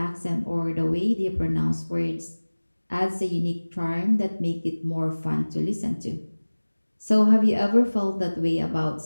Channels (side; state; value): both; inverted; correlation -1.00